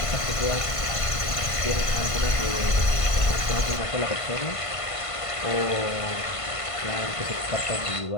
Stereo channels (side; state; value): right; late; 1.5 ms